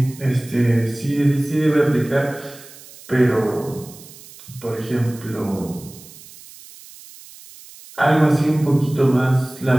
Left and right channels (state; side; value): noise; right; hiss, 20 dB below the sound